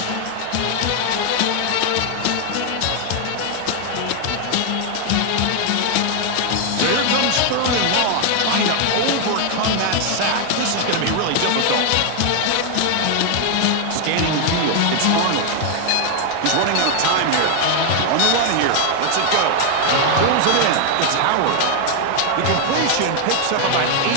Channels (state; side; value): different; both; correlation 0.00